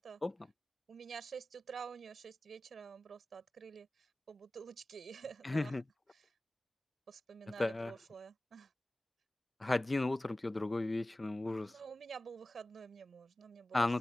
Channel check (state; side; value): normal; both; correlation 0.97